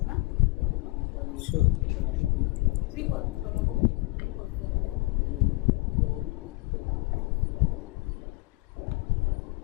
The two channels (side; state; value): right; quieter; 23.2 dB